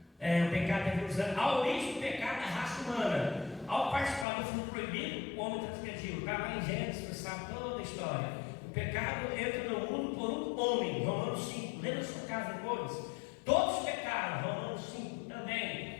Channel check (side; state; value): right; drops out; at 4.2 s